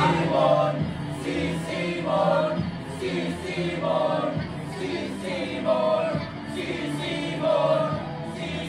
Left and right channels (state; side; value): identical; both; correlation 1.00